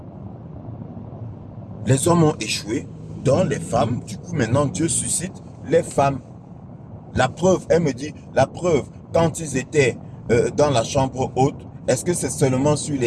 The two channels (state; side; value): identical; both; correlation 1.00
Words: les hommes ont échoué, donc les femmes, du coup maintenant Dieu suscite les femmes. La preuve, elle me dit, la preuve, quand ils étaient dans la chambre haute, est-ce que c'est seulement sur